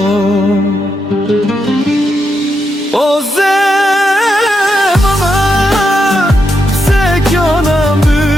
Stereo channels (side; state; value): both; normal; correlation 0.83